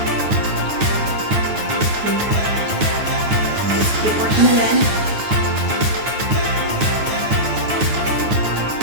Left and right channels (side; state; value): left; late; 9.2 ms